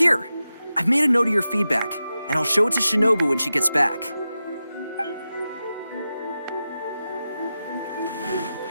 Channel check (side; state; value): both; inverted; correlation -0.92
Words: I've made a note of your feedback, and I'll show it to Shinobu when she gets back.